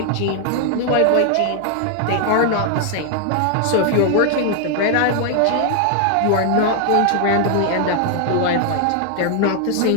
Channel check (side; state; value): both; different; correlation 0.00